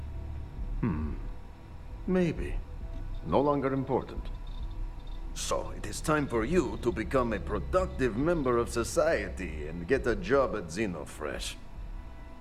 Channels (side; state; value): both; identical; correlation 1.00